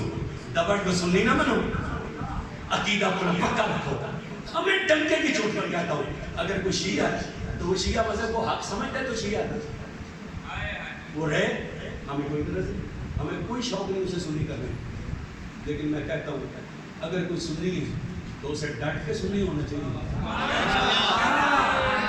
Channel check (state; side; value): identical; both; correlation 1.00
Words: دبڑ کے سنی نہ بنو، عقیدہ اپنا پکا رکھو. ہمیں ڈنکے کی چوٹ پر کہتا ہوں، اگر کوئی شیعہ ہے تو وہ شیعہ مذہب کو حق سمجھتا ہے تو شیعہ ہے، وہ رہے. ہمیں کوئی طرح سے ہمیں کوئی شوق نہیں اسے سنی کرنے. لیکن میں کہتا ہوں اگر کوئی سنی ہے تو اسے ڈٹ کے سنی ہونا چاہیے،